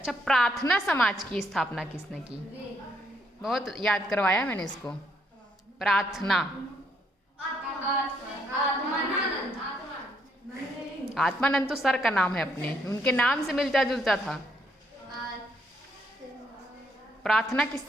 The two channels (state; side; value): normal; both; correlation 0.73